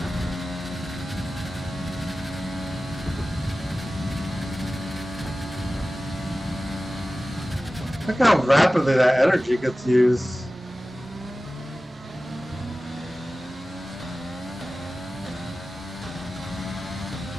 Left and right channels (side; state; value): both; normal; correlation 0.96